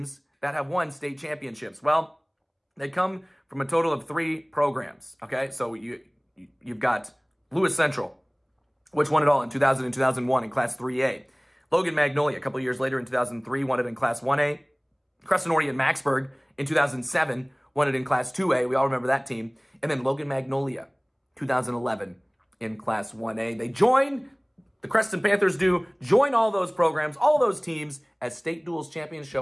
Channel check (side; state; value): both; identical; correlation 1.00